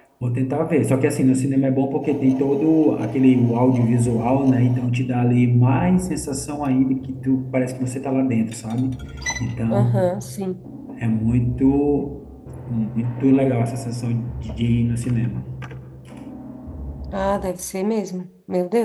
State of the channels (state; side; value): identical; both; correlation 1.00